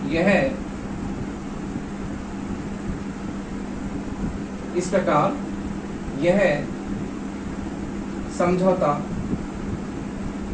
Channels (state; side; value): identical; both; correlation 1.00